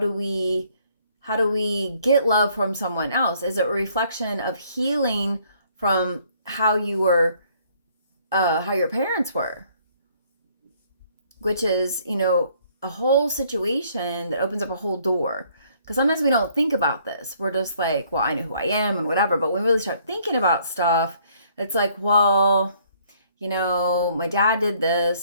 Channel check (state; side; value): inverted; both; correlation -0.64